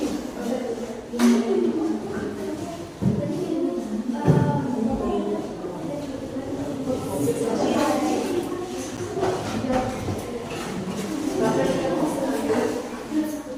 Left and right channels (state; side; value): identical; both; correlation 1.00